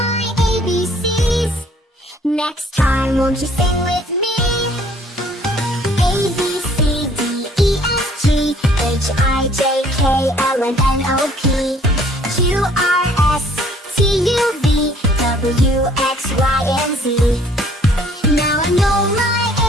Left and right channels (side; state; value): both; normal; correlation 0.58